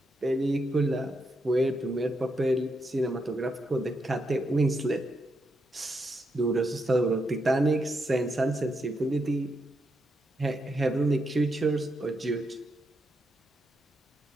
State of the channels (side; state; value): both; normal; correlation 0.82